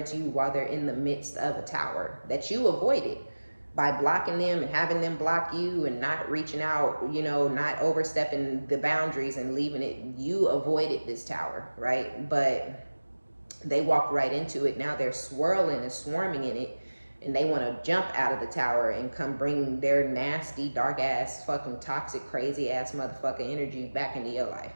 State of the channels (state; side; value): inverted; both; correlation -1.00